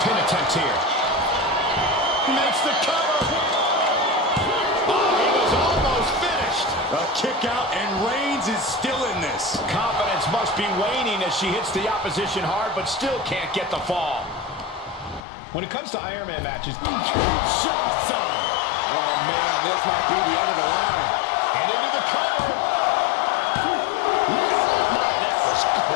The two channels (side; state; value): right; drops out; at 15.2 s